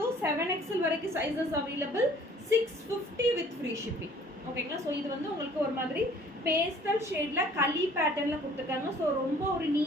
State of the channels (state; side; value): normal; both; correlation 0.54